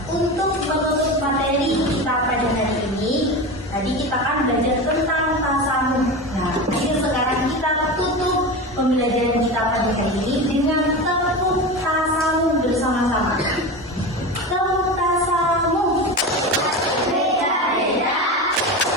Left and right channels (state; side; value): normal; both; correlation 0.25